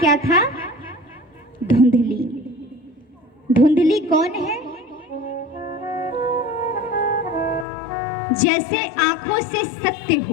था? धुंधली। धुंधली कौन है? जैसे आंखों से सत्य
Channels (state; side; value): drops out; right; at 7.7 s